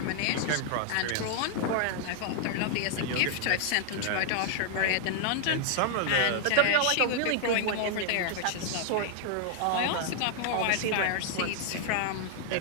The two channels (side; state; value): both; different; correlation 0.00